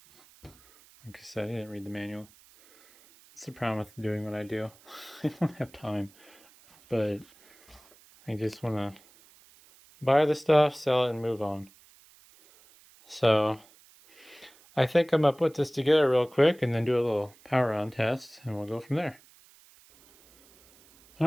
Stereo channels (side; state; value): right; noise; hiss, 27 dB below the sound